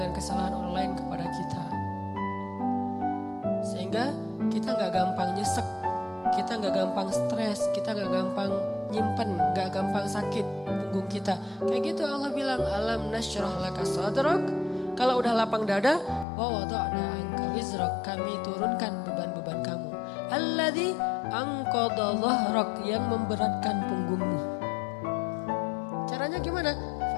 kesalahan orang lain kepada kita. Sehingga kita gak gampang nyesek, kita gak gampang stres, kita gak gampang nyimpen, gak gampang sakit punggung kita. Kayak gitu Allah bilang, alam nashrah laka sadrak. Kalau udah lapang dada, wa wada'na anka wizrak, kami turunkan beban-beban kamu. Alladzi anqadha dhahrak, yang memberatkan punggungmu. Caranya gimana?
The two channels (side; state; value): right; drops out; at 16.2 s